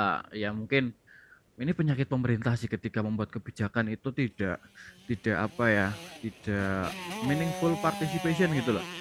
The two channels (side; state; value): both; identical; correlation 1.00